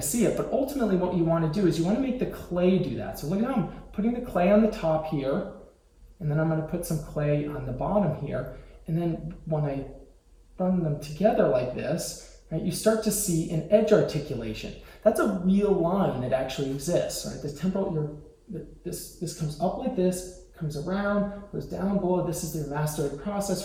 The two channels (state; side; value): identical; both; correlation 1.00